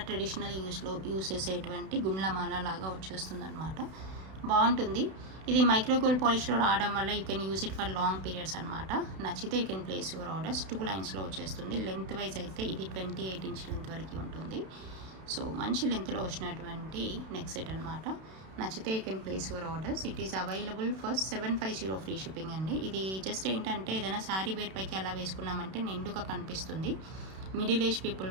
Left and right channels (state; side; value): late; left; 32 ms